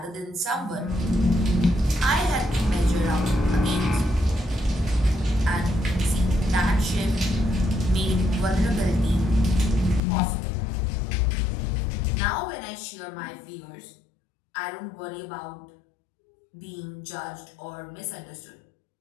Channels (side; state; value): right; drops out; at 10.0 s